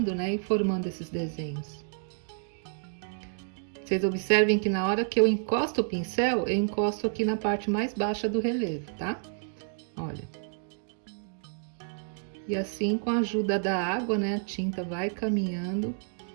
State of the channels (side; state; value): left; silent; 58 dB below the other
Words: né, e formando esses desenhos. Vocês observem que na hora que eu encosto o pincel, eu encosto aqui na parte mais baixa do relevo, tá? Olha. E assim, com a ajuda da água, né, a tinta vai caminhando